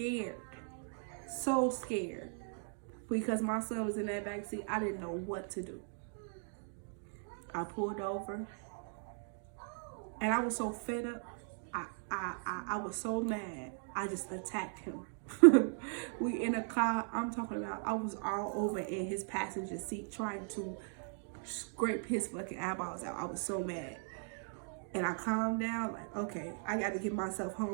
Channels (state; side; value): silent; left; 52 dB below the other